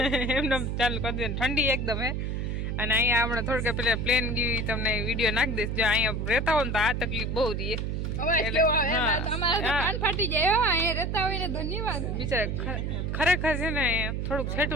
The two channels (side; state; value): right; noise; hum, 2 dB below the sound